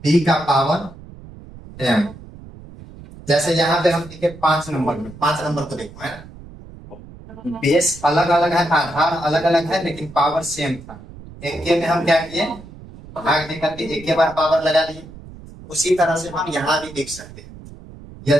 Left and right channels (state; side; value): noise; right; rumble, 17 dB below the sound